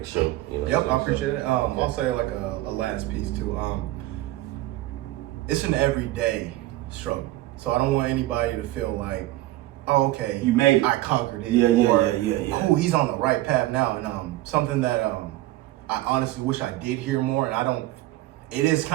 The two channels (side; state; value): left; quieter; 16.9 dB